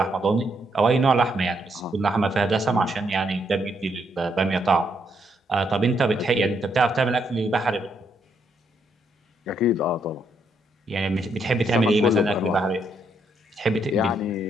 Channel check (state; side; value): normal; both; correlation 0.75